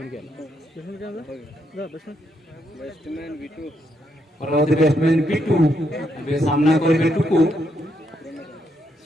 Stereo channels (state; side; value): normal; both; correlation 0.77